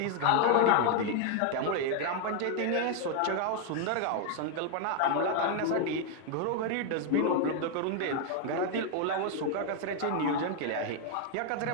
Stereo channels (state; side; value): different; both; correlation 0.00